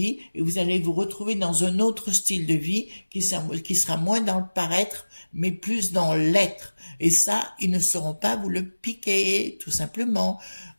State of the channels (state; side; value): inverted; both; correlation -1.00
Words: et vous allez vous retrouver dans un autre style de vie qui sera moins dans le paraître, mais plus dans l'être. Et ça, ils ne sauront pas vous le piquer, tout simplement.